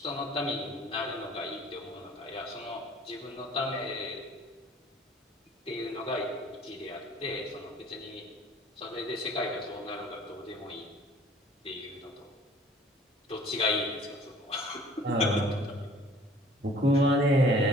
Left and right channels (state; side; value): normal; both; correlation 0.52